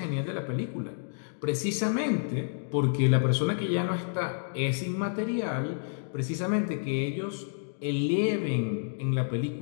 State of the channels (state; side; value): silent; right; digital silence